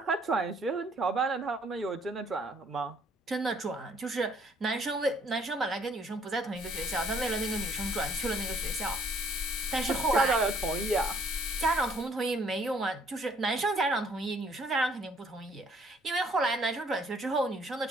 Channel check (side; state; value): both; normal; correlation 0.63